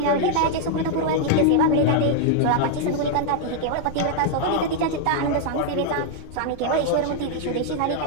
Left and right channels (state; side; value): different; both; correlation 0.00